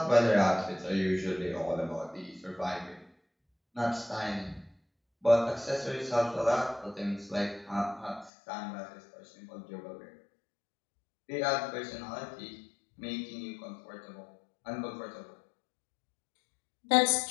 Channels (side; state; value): right; drops out; at 8.3 s